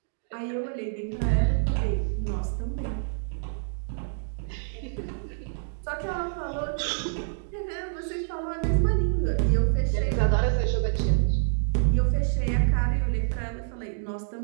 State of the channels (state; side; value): silent; left; digital silence